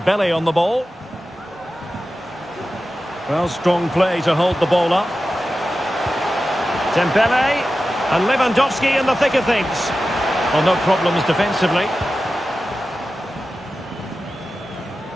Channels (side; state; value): both; normal; correlation 0.93